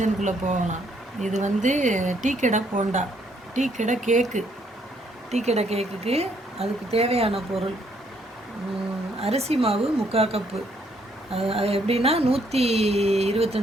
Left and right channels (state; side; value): normal; both; correlation 0.69